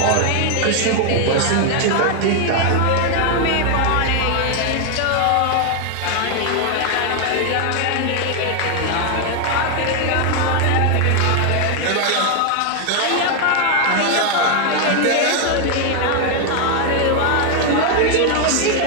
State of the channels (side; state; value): both; different; correlation 0.01